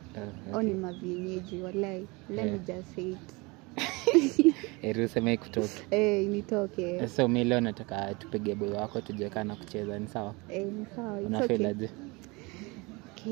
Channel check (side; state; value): left; quieter; 25.8 dB